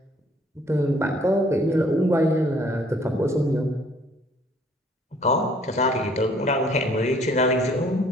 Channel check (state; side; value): normal; both; correlation 0.60